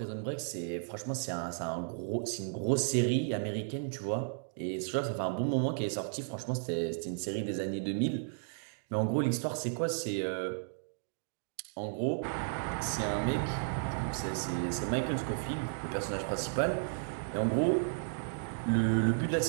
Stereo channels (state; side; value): silent; left; digital silence